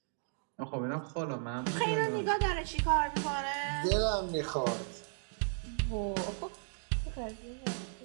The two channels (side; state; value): left; silent; digital silence